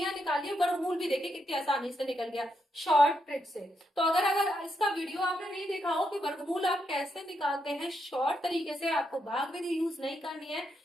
निकालिए, वर्गमूल भी देखिए कितनी आसानी से निकल गया शॉर्ट ट्रिक से। तो अगर इसका वीडियो आपने नहीं देखा हो कि वर्गमूल आप कैसे निकालते हैं शॉर्ट तरीके से, आपको भाग विधि यूज नहीं करनी है,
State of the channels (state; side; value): normal; both; correlation 0.80